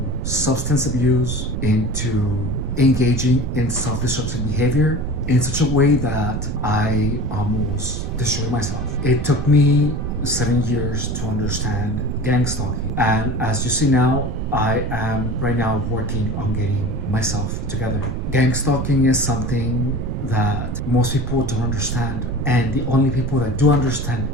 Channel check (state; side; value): noise; right; rumble, 3 dB below the sound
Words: substance abuse, into engaging in self-destructive behavior in such a way that I almost destroyed myself. It took me 7 years to understand gang stalking. And as you see now, I am right now working on getting myself together. Gang stalking is something that most people don't understand, and the only people that do understand